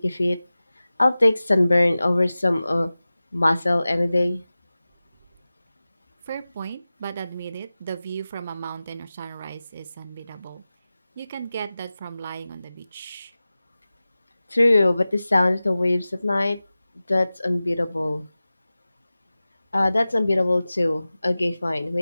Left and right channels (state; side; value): inverted; both; correlation -0.96